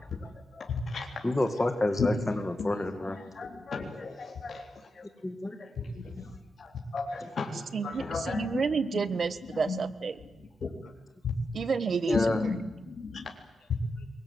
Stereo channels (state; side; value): normal; both; correlation 0.86